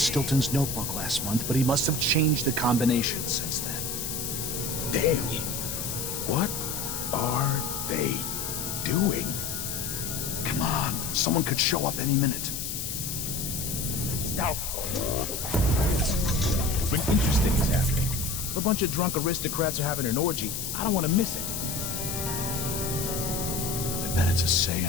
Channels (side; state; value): left; noise; hiss, 4 dB below the sound